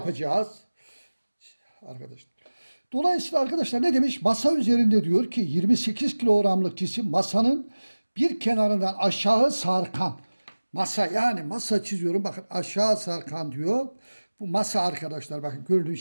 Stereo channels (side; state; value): both; inverted; correlation -1.00